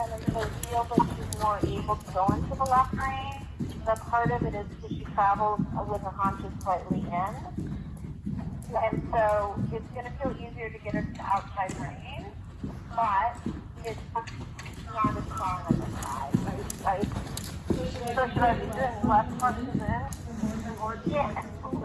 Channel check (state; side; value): identical; both; correlation 1.00